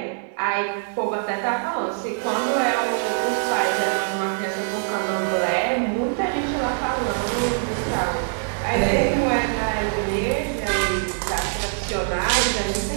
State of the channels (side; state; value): left; silent; 63 dB below the other